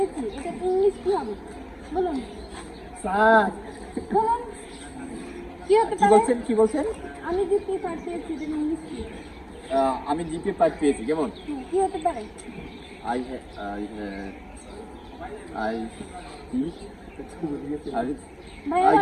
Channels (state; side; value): identical; both; correlation 1.00